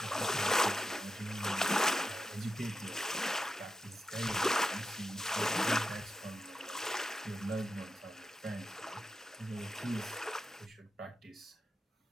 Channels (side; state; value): both; normal; correlation 0.87